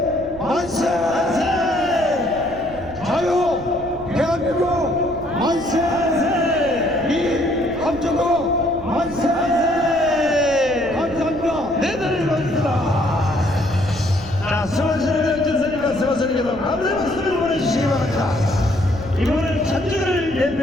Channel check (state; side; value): noise; right; rumble, 17 dB below the sound